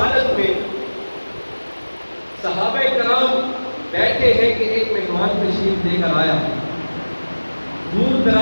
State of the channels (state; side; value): inverted; both; correlation -1.00